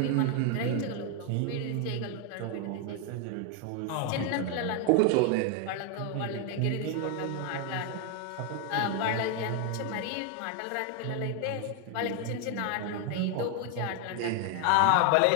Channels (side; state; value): both; different; correlation 0.01